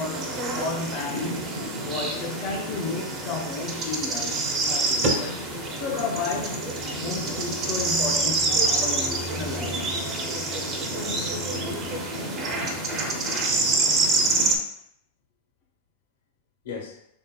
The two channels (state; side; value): normal; both; correlation 0.18